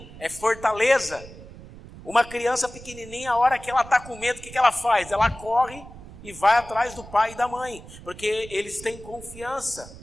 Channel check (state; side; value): noise; right; rumble, 17 dB below the sound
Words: é fortaleza. Uma criança pequenininha, a hora que ela está com medo, o que ela faz? Ela corre e vai atrás do pai e da mãe, porque eles têm confiança